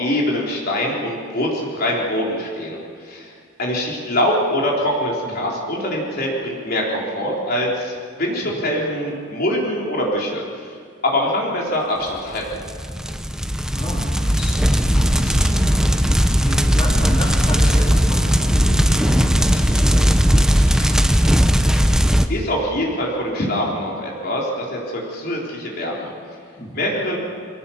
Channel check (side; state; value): both; normal; correlation 0.69